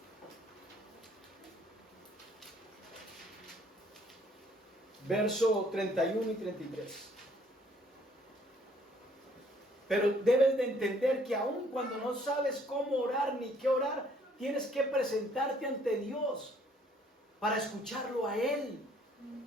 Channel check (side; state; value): both; normal; correlation 0.62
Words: Verso 31 y 33. Pero debes de entender que aun cuando no sabes cómo orar ni qué orar, tienes que presentarte ante Dios para escucharlo a Él.